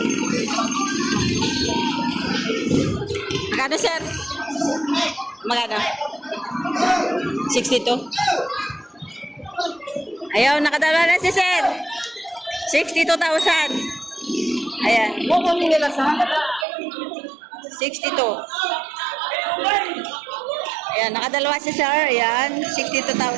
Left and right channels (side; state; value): left; drops out; at 16.7 s